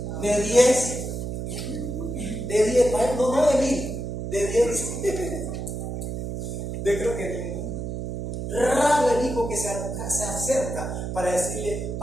De 10, no de 1000, de 10. Yo creo que raro el hijo que se acerca para decirle:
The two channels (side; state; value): right; noise; hum, 4 dB below the sound